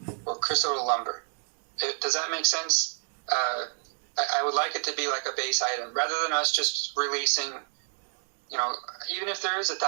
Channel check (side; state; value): left; silent; 59 dB below the other